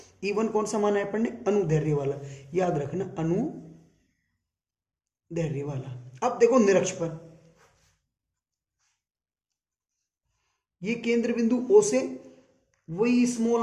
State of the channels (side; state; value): both; identical; correlation 1.00